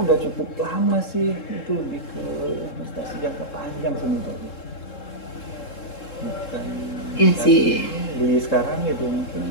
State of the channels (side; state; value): right; late; 3.7 ms